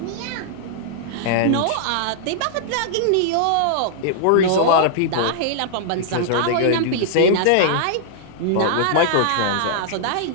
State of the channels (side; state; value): both; different; correlation -0.01